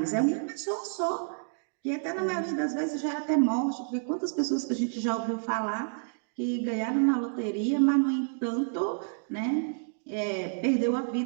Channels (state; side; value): silent; left; digital silence